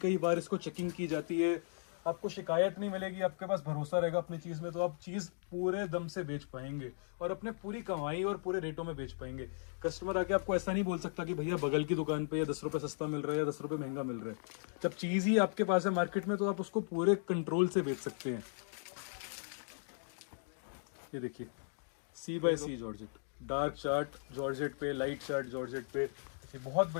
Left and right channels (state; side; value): silent; right; digital silence